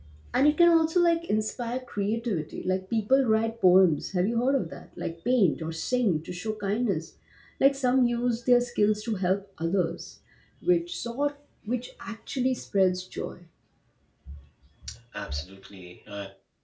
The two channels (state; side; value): identical; both; correlation 1.00